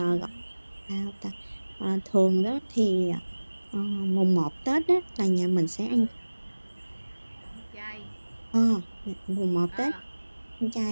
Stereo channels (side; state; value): both; inverted; correlation -1.00